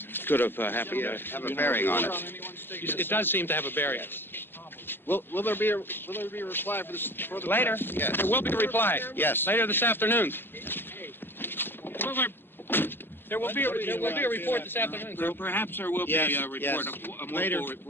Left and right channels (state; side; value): late; right; 0.10 ms